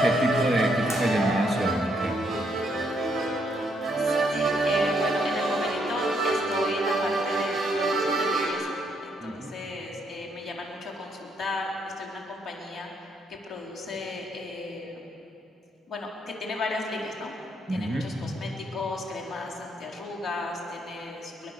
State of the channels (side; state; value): both; normal; correlation 0.73